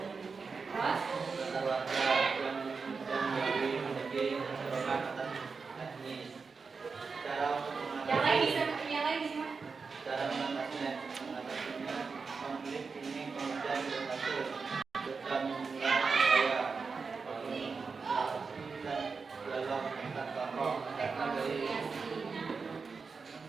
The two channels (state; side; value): quieter; left; 4.9 dB